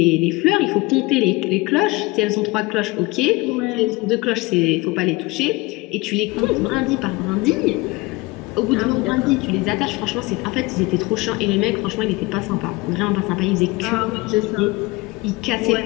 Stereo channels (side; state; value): right; quieter; 22.8 dB